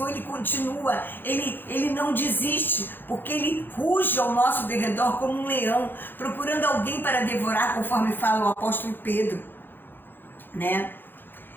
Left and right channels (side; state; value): right; late; 0.097 ms